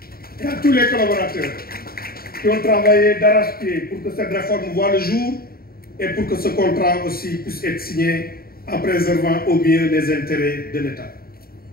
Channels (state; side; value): late; right; 0.44 ms